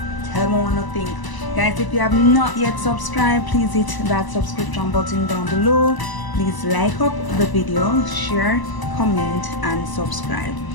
Tell me what you think. Guys, if you have not yet subscribed, please hit that subscription button down below. Please like up the video, share, comment, and subscribe.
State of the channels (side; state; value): right; late; 1.0 ms